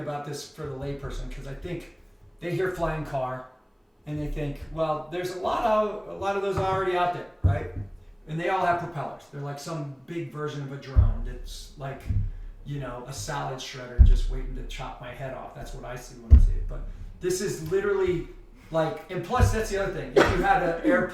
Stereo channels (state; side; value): identical; both; correlation 1.00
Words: this for the layperson, because I think they hear flying car, and they think, well, there's a lot of those already out there, right? And they all have propellers. They're like some big version of a drone that's like, a salad shredder just waiting to chop my head off. That's what I see when I see it. But this is literally like, and plus that's the other thing. If you had an